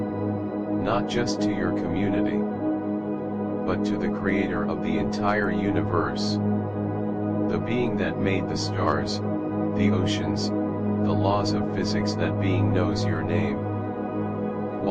Not just to your community. But to the creator of the entire universe. The being that made the stars, the oceans, the laws of physics. That being knows your name.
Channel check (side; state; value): both; identical; correlation 1.00